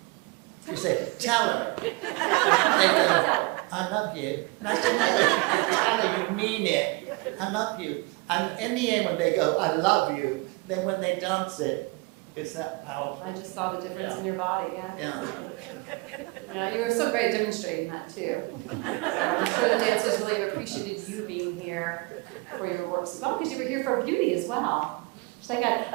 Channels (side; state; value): left; quieter; 25.7 dB